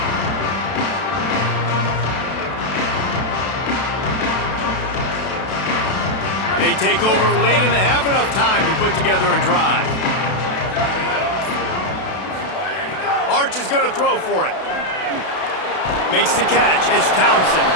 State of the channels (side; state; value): right; late; 32 ms